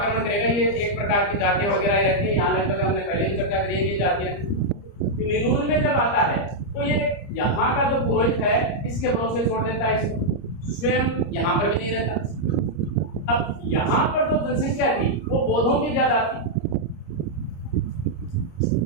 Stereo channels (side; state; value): right; late; 30 ms